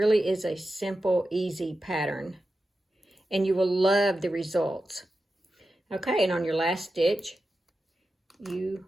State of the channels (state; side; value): normal; both; correlation 0.91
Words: is a simple, easy pattern, and you will love the results. Okay, and on your last stitch, you